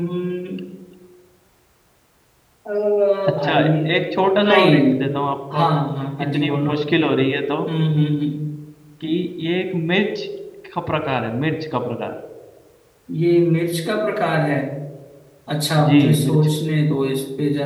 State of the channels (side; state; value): both; identical; correlation 1.00